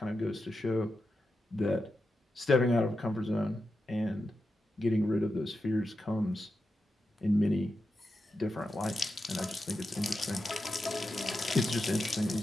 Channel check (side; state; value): both; normal; correlation 0.89